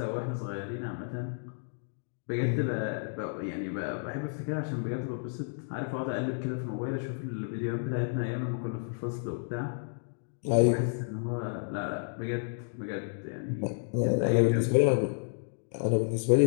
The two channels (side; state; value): right; silent; digital silence